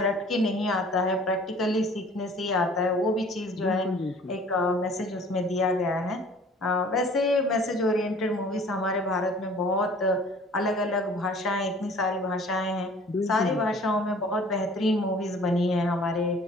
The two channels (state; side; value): normal; both; correlation 0.50